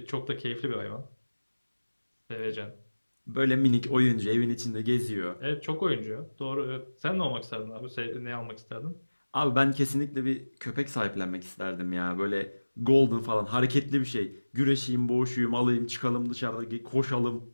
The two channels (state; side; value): inverted; both; correlation -1.00